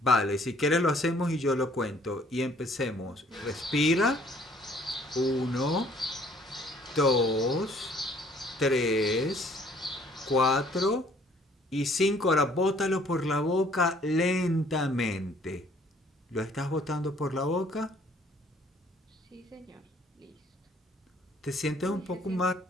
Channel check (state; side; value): normal; both; correlation 0.59